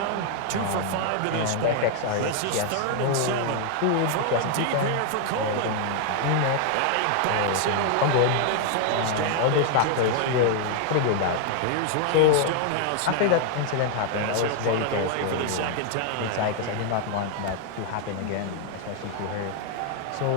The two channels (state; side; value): different; both; correlation 0.00